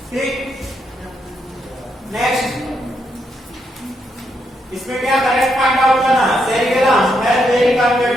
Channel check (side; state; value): both; normal; correlation 0.79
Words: ठीक, नेक्स्ट इसमें क्या करेक्ट फाइंड आउट करना? Cerebellum has very